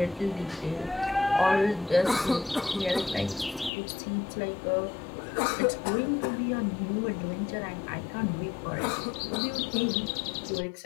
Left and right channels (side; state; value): right; drops out; at 3.7 s